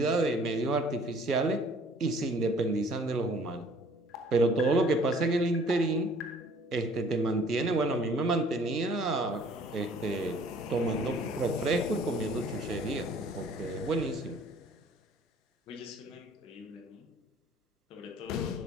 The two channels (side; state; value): both; normal; correlation 0.55